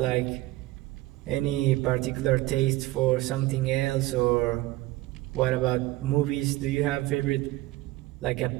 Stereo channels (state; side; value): quieter; left; 18.1 dB